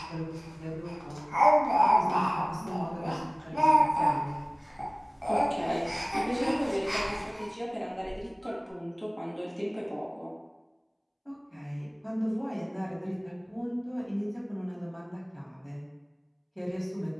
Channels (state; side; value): identical; both; correlation 1.00